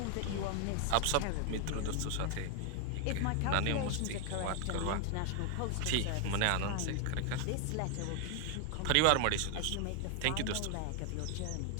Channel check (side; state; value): both; different; correlation 0.00